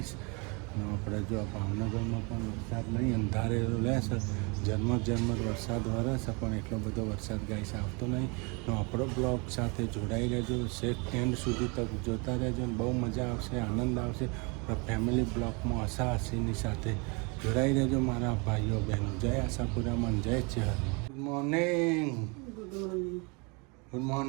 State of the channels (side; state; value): left; quieter; 30.7 dB